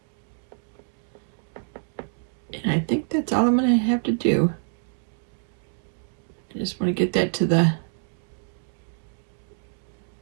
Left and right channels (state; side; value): silent; left; digital silence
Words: And I think that's all I'm going to have to do. I just want to get that to the